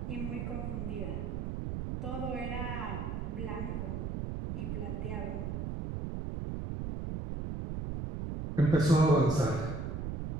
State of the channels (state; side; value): noise; right; rumble, 3 dB below the sound